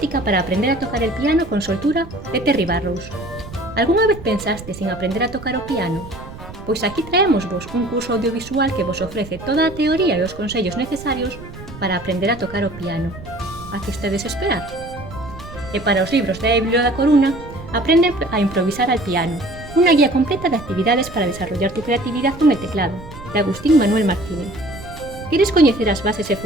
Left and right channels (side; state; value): right; noise; rumble, 15 dB below the sound